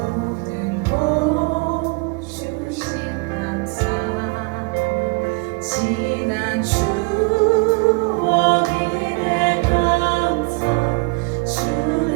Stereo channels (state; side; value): quieter; left; 29.4 dB